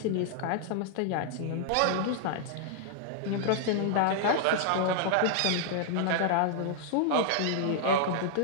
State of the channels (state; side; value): different; both; correlation -0.01